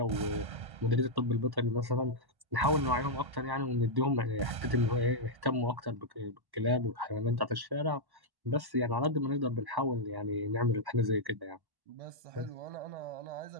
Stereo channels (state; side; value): late; left; 1.1 ms